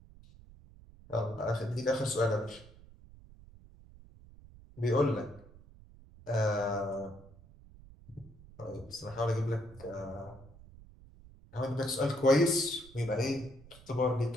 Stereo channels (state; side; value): noise; right; rumble, 21 dB below the sound